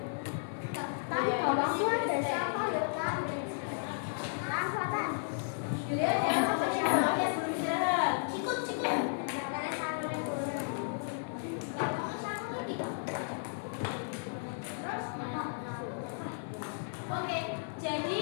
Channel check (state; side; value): silent; right; digital silence